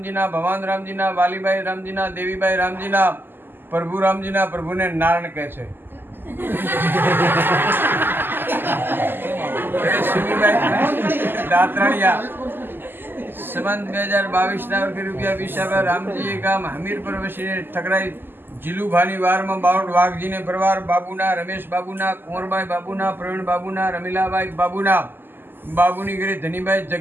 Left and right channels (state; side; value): late; left; 0.095 ms